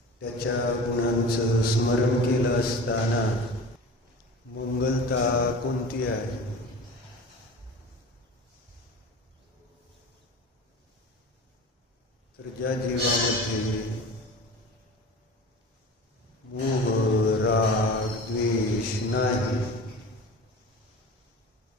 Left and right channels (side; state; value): both; normal; correlation 0.35